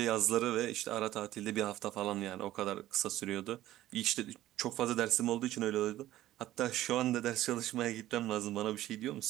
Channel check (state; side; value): quieter; left; 14.5 dB